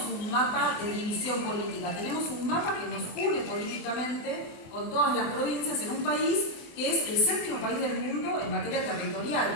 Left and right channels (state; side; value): late; right; 24 ms